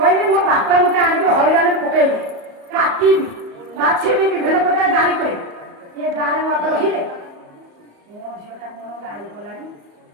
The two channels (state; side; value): late; left; 34 ms